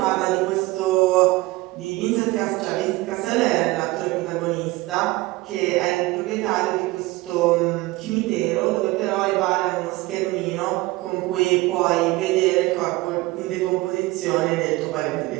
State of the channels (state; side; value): quieter; left; 20.5 dB